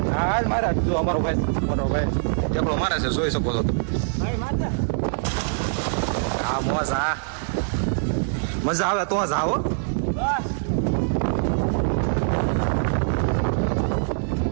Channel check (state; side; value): silent; left; digital silence